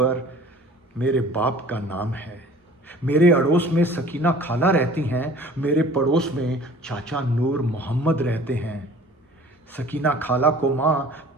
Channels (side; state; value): both; normal; correlation 0.47